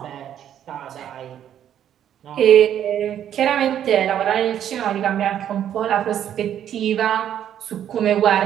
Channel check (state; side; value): quieter; left; 10.2 dB